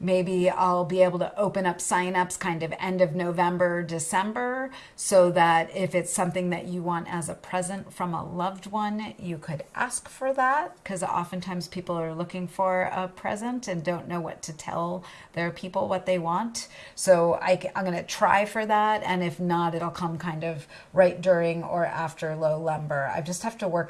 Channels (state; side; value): identical; both; correlation 1.00